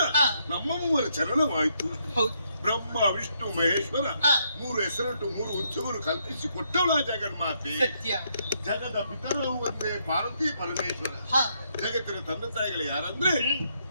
ನಮ್ಮ ಮೂವರ ಚರಣವಾಯಿತು. ಹೌದು. ಬ್ರಹ್ಮ ವಿಷ್ಣು ಮಹೇಶ್ವರ ಮೂರು ಹೆಸರಿಟ್ಟು ಮೂರು ಉತ್ಸವರು ಕಲ್ಪಿಸಿ ಕೊಟ್ಟವಳ ಜಗನ್ಮಾತೆ. ಸತ್ಯ. ಜಗದ ಪಿತರು ಒಂದೇ ಪಾರ್ವತಿ ಪರಮೇಶ್ವರ. ಜಗತ್ತಿನ ತಂದೆ ತಾಯಿಗಳು ಯಾರಂದ್ರೆ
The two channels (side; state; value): both; inverted; correlation -0.75